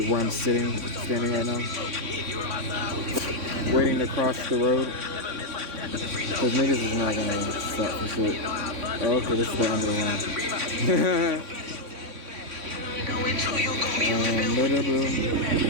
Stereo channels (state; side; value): late; left; 3.6 ms